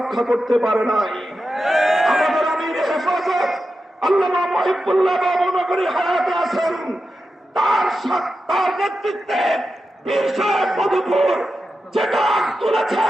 করতে পারে নাই। আমাদের আমির হেফাজত আল্লামা মহিবুল্লাহ বাবু নগরী হায়াতে আছেন, তার নেতৃত্বে পীর সাহেব মধুপুর যেটা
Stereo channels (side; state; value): both; normal; correlation 0.90